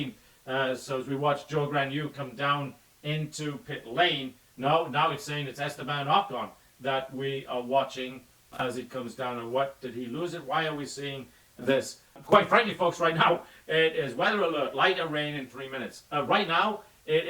So as we watch Joe Granu come down into pit lane, now it's saying it's Esteban Ocon that we are watching as he comes down. And what, did he lose it? Why are we seeing this? Quite frankly, folks, right now, it is weather alert, lighter rain in 3 minutes. Right now,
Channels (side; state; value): both; identical; correlation 1.00